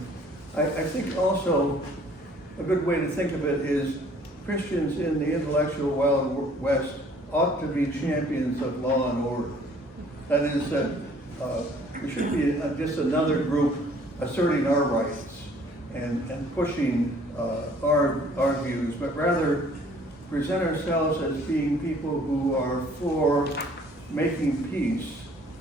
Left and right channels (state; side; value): normal; both; correlation 0.57